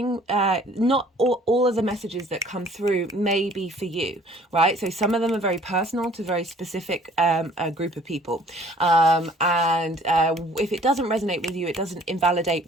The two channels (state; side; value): normal; both; correlation 0.55